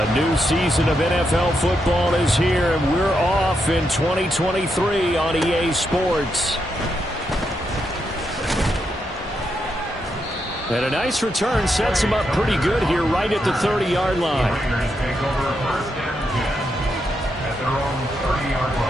new season of NFL football is here, and we're off in 2023 on EA Sports. And a nice return sets him up pretty good here right at the 30-yard line.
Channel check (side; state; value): both; normal; correlation 0.82